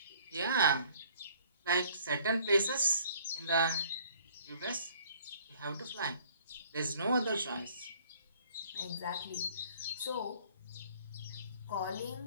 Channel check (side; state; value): both; inverted; correlation -0.57